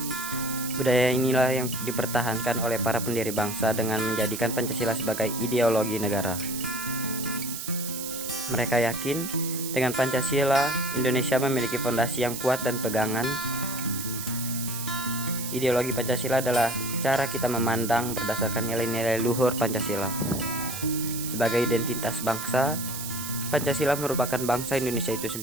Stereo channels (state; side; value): noise; right; hiss, 7 dB below the sound